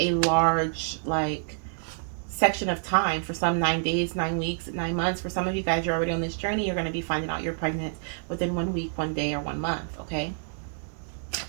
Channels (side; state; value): left; silent; 60 dB below the other